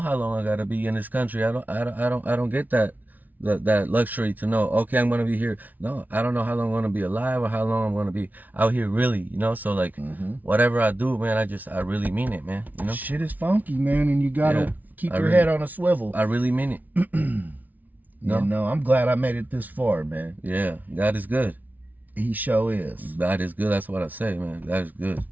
how long I gotta be in this country. I don't get that luxury to know. Okay, I'm gonna be here. No, I don't know how long I'm gonna be alive or how long I'm gonna be out here. Really, you know. So like, whatever I do, man, I really mean it, man. You know, shit is funky, man, and you gotta keep your head on a swivel. I really mean it. No, I'm glad I made it this far, man. Yeah, God is good. He sure is. God is good. That's what I say, man. God is good.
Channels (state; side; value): late; left; 0.078 ms